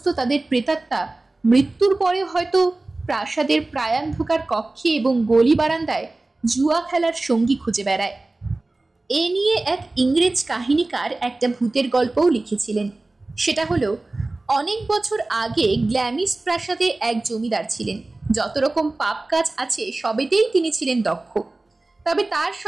তাদের প্রেতাত্মা মৃত্যুর পরে হয়তো প্রাসাদের প্রায়ান্ধকার কক্ষে এবং গলি বারান্দায় জুয়া খেলার সঙ্গী খুঁজে বেড়ায়। এ নিয়ে এক ইংরেজ কাহিনীকার একটা ভূতের গল্পও লিখেছিলেন। সেটা হলো, অনেক বছর আগে গ্ল্যামিস প্রাসাদে এক জমিদার ছিলেন। যত রকম পাপ কাজ আছে সবেতেই তিনি ছিলেন দক্ষ, তবে তার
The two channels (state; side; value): quieter; left; 3.0 dB